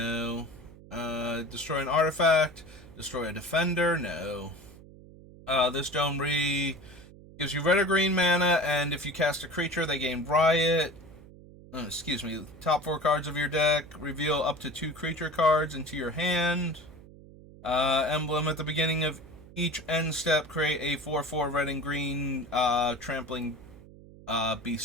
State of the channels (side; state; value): right; noise; hum, 20 dB below the sound